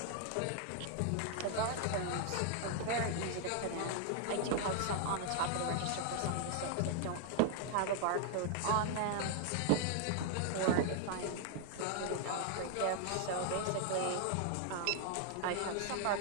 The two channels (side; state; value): both; different; correlation 0.00